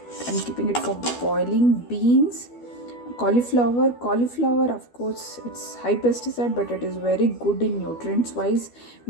keeping it for boiling. Beans, cauliflower, of course it's high pesticide, but it is very good in nutrients wise.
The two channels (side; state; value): right; late; 12 ms